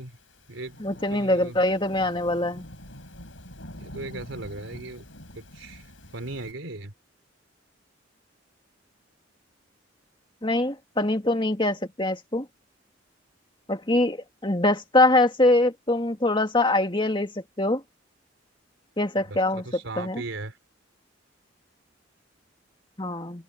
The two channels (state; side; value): normal; both; correlation 0.48